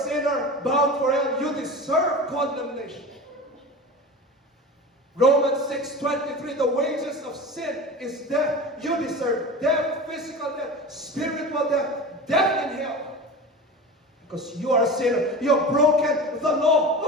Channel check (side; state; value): both; normal; correlation 0.31